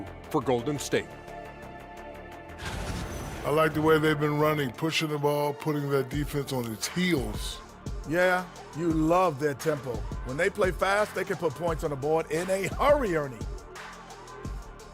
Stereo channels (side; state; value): both; identical; correlation 1.00